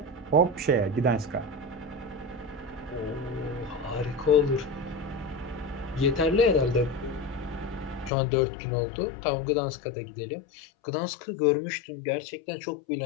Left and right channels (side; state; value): right; drops out; at 8.1 s